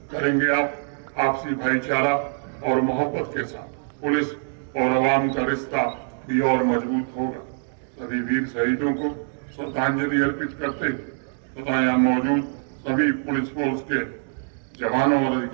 करेंगे। आप आपसी भाईचारा और मोहब्बत के साथ पुलिस और आवाम का रिश्ता भी और मजबूत होगा। सभी वीर शहीदों को श्रद्धांजलि अर्पित करते तथा यहाँ मौजूद सभी पुलिस फोर्स के जवानों और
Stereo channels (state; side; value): silent; left; digital silence